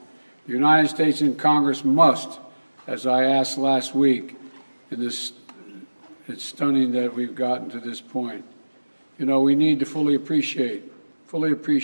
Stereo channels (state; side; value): inverted; both; correlation -1.00